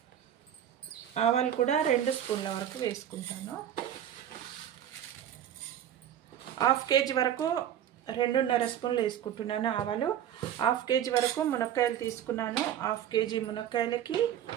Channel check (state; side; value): quieter; left; 10.5 dB